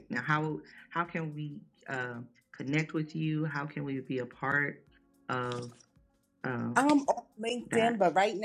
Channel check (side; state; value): both; identical; correlation 1.00